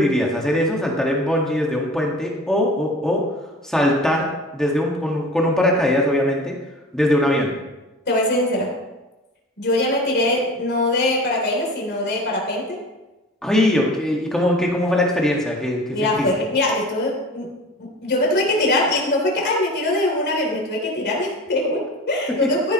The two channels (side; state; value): both; normal; correlation 0.38